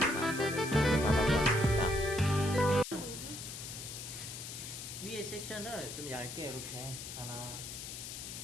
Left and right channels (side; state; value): left; noise; hiss, 9 dB below the sound